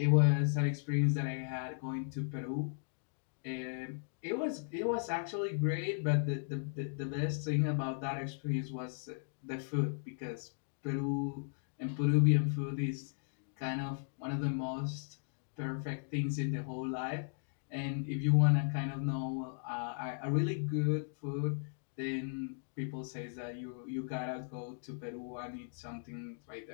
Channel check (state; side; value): silent; right; digital silence